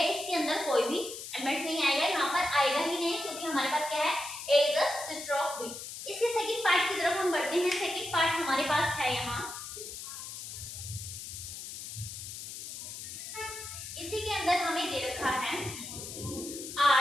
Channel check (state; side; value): noise; left; hiss, 9 dB below the sound